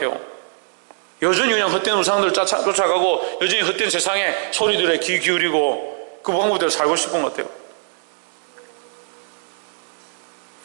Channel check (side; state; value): left; silent; digital silence